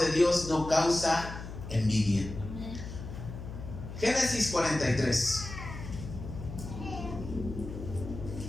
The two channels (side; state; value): left; noise; hum, 10 dB below the sound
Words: Dios no causa envidia. Génesis 43.